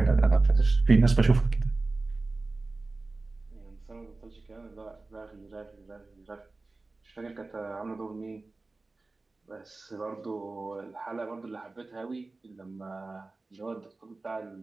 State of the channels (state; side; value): quieter; left; 3.4 dB